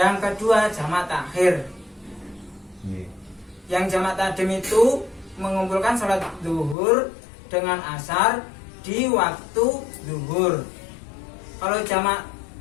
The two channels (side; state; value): right; drops out; at 6.8 s